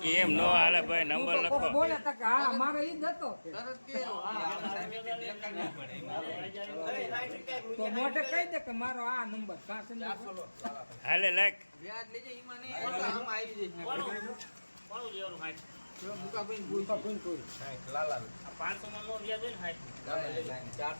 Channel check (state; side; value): inverted; both; correlation -1.00